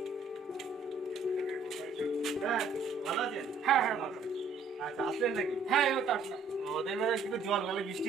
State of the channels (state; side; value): quieter; left; 4.4 dB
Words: ভালো আছেন? হ্যাঁ হ্যাঁ ভালো। আচ্ছা, আসলেন নাকি? হ্যাঁ এবার আসলাম। ওদের মানে একটু জল গেলে বৃষ্টি